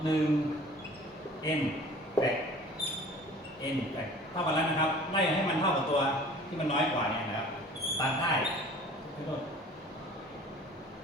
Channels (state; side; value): normal; both; correlation 0.47